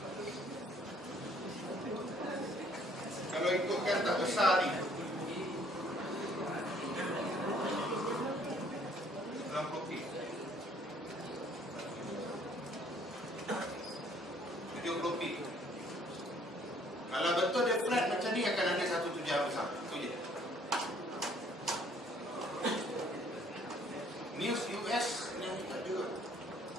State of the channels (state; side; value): normal; both; correlation 0.61